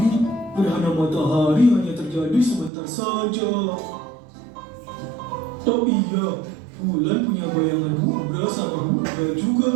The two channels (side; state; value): left; drops out; at 2.7 s